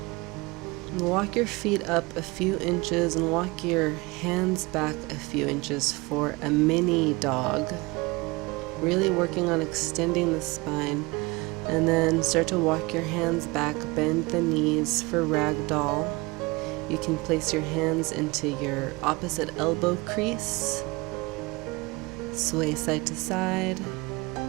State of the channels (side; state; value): left; quieter; 24.3 dB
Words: Walk your feet up a few inches and walk your hands back a few inches for a mini dog. Really working on extending the spine. And then start to walk your hands back, bend the knees for ragdoll. You can place your hands into your opposite elbow crease. Sway side to side.